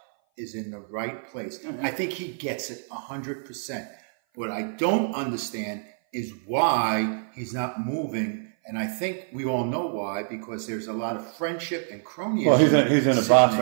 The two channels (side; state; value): left; silent; 57 dB below the other